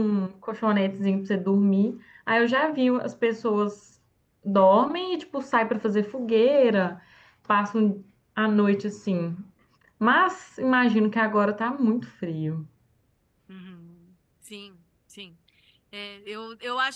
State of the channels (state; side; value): identical; both; correlation 1.00